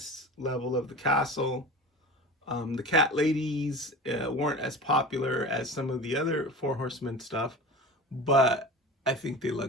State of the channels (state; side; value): normal; both; correlation 0.34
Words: level of the castle. The cat ladies weren't as popular as some of the other Four Horsemen stuff, but I think they